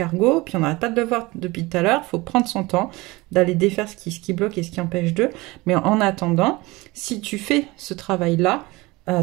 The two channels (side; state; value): left; quieter; 22.2 dB